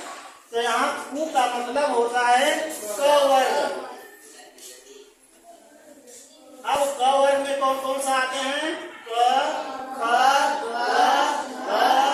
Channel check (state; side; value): identical; both; correlation 1.00